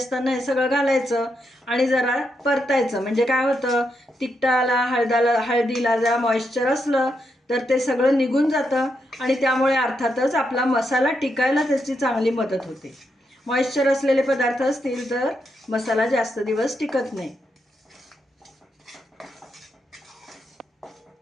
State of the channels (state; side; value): normal; both; correlation 0.82